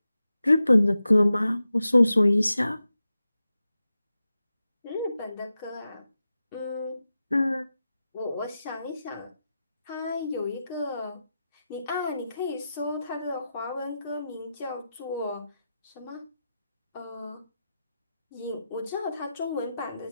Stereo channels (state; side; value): inverted; both; correlation -0.91